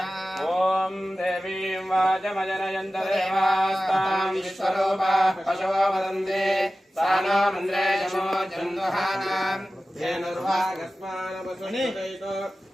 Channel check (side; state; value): both; normal; correlation 0.95